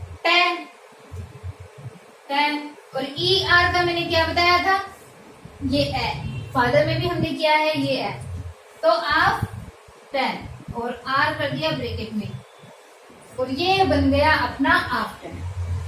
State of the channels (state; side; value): identical; both; correlation 1.00